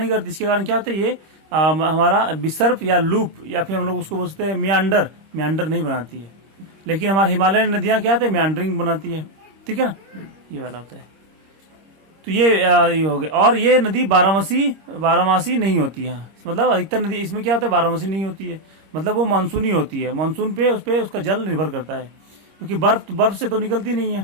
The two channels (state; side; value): late; left; 26 ms